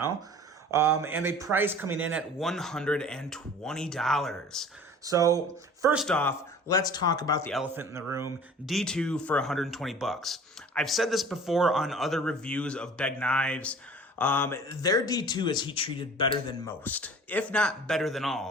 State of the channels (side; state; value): both; normal; correlation 0.45